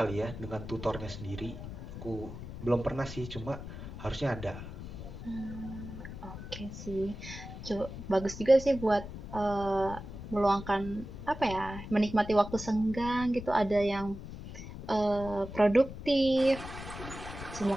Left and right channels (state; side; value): noise; left; rumble, 11 dB below the sound